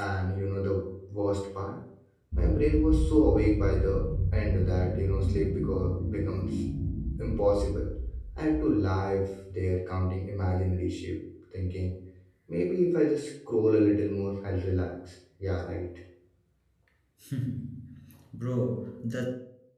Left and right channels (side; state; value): both; identical; correlation 1.00